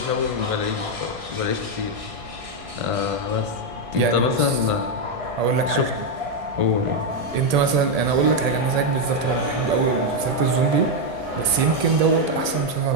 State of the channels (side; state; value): left; late; 1.8 ms